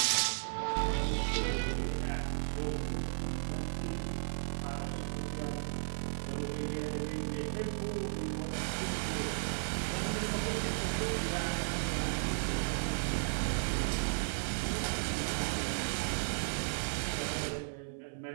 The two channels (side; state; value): left; silent; 54 dB below the other